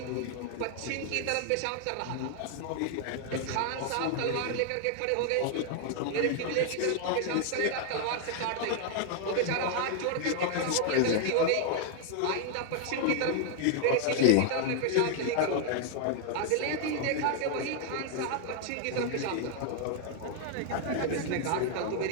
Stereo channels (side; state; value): both; different; correlation 0.00